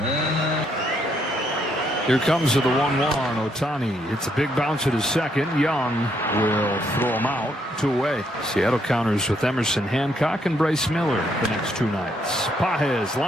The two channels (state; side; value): normal; both; correlation 0.73